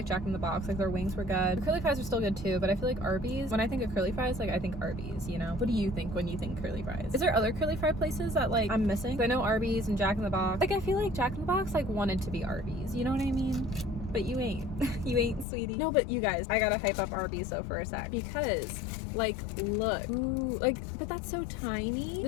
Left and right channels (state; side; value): drops out; right; at 15.5 s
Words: Jack in the Box, like their wings were good. The curly fries are still good too, but I feel like Arby's, when I think of curly fries, like I think Arby's, you know? What do you think when you think curly fries? Is there other curly fry places that like I'm missing? I know Arby's and Jack in the Box. Like I feel like Jack in the Box like wanted to be Arby's, you know what I mean? But you ain't. You ain't, sweetie. No, but you guys, I gotta hype up Arby's though for a sec, because like look, ooh, like, but that's so tiny.